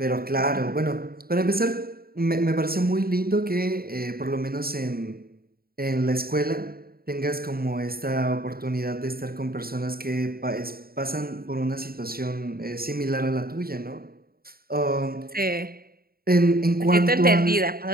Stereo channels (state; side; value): late; left; 0.44 ms